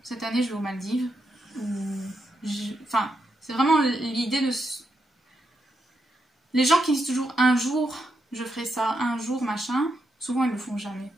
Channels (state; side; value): normal; both; correlation 0.83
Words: cette année je vais aux Maldives. Enfin, c'est vraiment l'idée de... Les gens qui disent toujours un jour je ferai ça, un jour machin, souvent ils ne le font jamais.